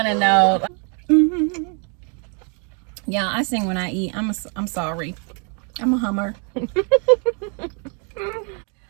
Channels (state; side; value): quieter; left; 39.0 dB